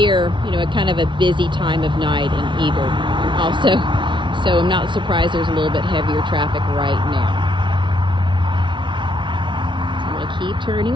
at kind of a busy time of night in Eagle also. So I'm not surprised there's a little bit heavier traffic right now. So I'm going to keep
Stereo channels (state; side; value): late; left; 0.24 ms